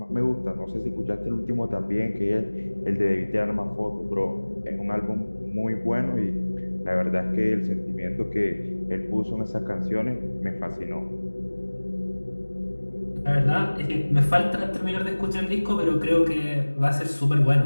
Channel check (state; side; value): inverted; both; correlation -1.00